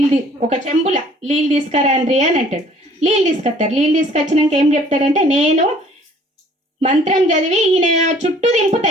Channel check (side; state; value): both; normal; correlation 0.56